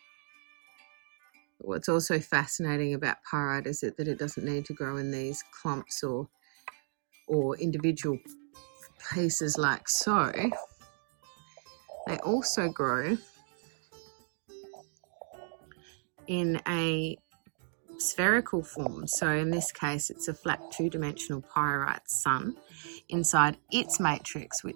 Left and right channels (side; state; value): left; silent; digital silence